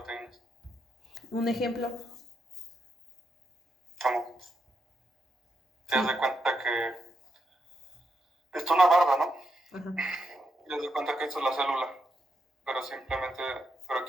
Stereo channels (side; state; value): both; normal; correlation 0.82